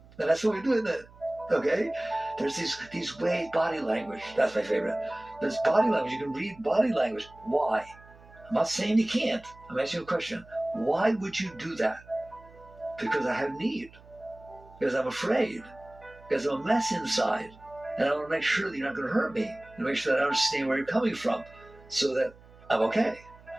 And that's what we do, isn't it? Okay? There's these ways, body language. That's my favorite. There's body language. You can read body language. Why? I'm not saying you can't. I'm asking you a question. Why would you do that? Because I have need. Because I'm afraid. Because I'm a mess inside. And I want to make sure that you're not going to hurt me. And make sure that I understand where you're coming from. So that I'm okay.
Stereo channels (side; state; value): right; noise; hum, 23 dB below the sound